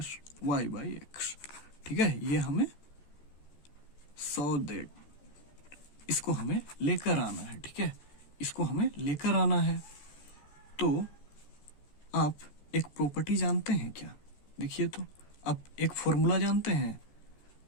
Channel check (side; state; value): right; late; 14 ms